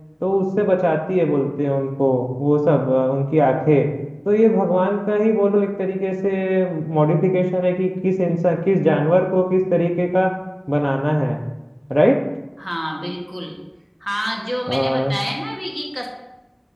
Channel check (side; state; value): both; identical; correlation 1.00